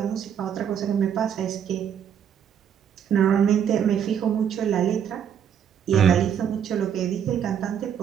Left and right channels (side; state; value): left; quieter; 8.6 dB